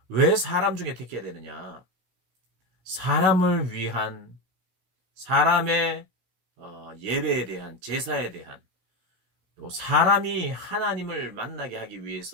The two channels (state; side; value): late; left; 15 ms